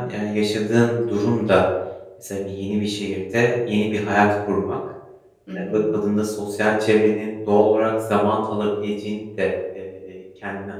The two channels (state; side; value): identical; both; correlation 1.00